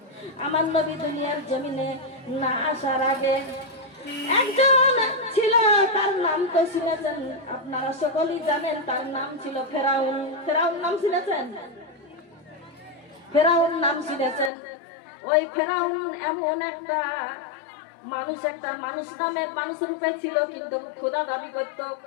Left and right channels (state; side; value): drops out; right; at 14.5 s